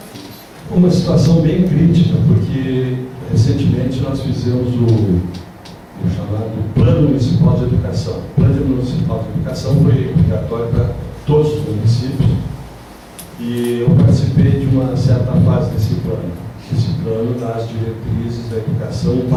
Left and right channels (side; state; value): both; identical; correlation 1.00